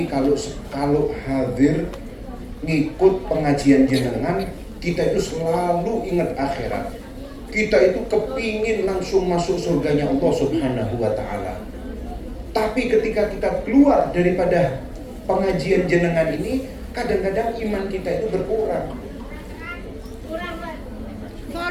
kalau hadir ngikut pengajian jenengan, kita itu selalu ingat akhirat. Kita itu kepingin langsung masuk surganya Allah Subhanahu wa ta'ala. Tapi ketika kita keluar daripada pengajian jenengan ini, kadang-kadang iman kita itu berkurang.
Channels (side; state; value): both; identical; correlation 1.00